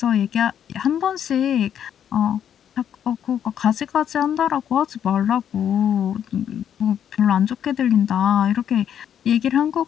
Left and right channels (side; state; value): right; quieter; 9.3 dB